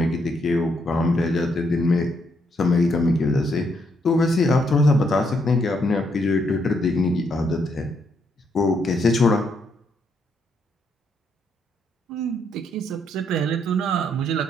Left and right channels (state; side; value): normal; both; correlation 0.75